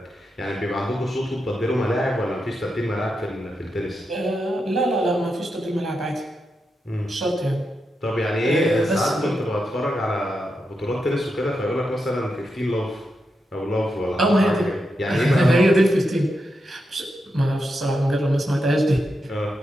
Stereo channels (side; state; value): both; normal; correlation 0.86